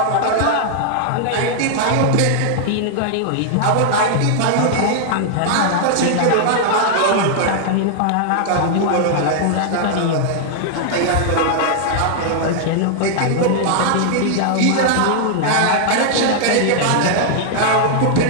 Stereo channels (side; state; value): both; different; correlation -0.01